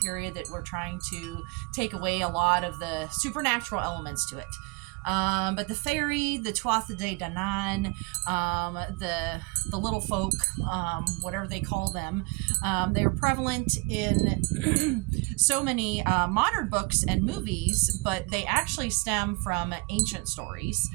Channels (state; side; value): quieter; left; 27.8 dB